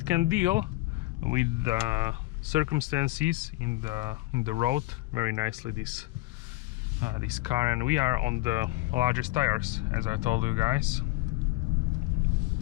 can deal with the circumstances in the road very nicely, this car. And we are on the largest tires, as I told you guys.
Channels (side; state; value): right; quieter; 19.9 dB